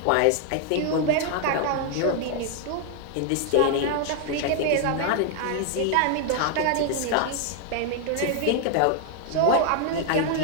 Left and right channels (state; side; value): different; both; correlation 0.00